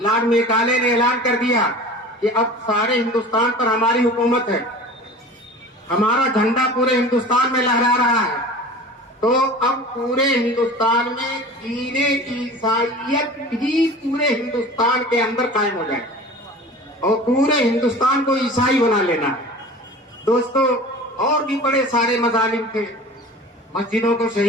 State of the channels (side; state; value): both; normal; correlation 0.39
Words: لارڈ میکالے نے اعلان کر دیا کہ اب سارے ہندوستان پر ہماری حکومت ہے، ہمارا جھنڈا پورے ہندوستان میں لہرا رہا ہے، تو اب پورے ہندوستان میں دین عیسائیت بھی پورے ہندوستان کے اندر قائم ہو جائے اور پورے ہندوستان کو عیسائی بنا لینا ہے. دوستو، اور بھی بڑے سارے مظالم تھے، مسجدوں کو